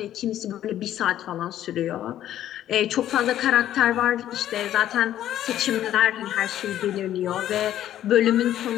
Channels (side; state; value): right; quieter; 12.0 dB